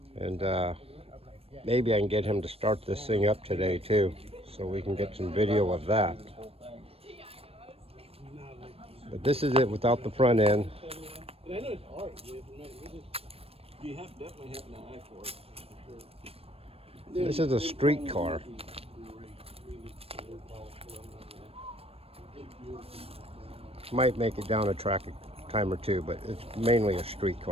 And maybe I can get him to start this thing up today too, so we can get some video of that. But this is it without the front end. This is a street car. Might make it down a track a time or two, but it's mainly a street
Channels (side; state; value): left; late; 0.28 ms